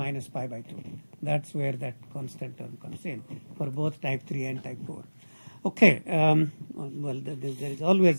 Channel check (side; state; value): both; inverted; correlation -1.00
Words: pi by 2. That's where that constant term comes in for both type 3 and type 4. Okay, well, there is